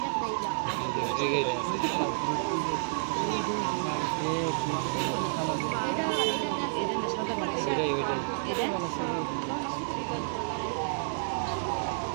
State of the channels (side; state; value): left; silent; digital silence